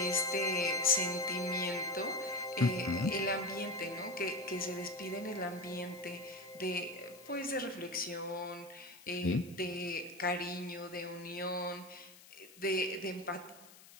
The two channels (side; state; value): left; noise; hiss, 21 dB below the sound